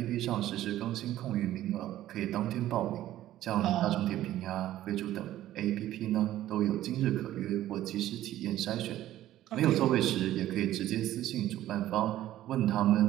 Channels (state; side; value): quieter; left; 13.7 dB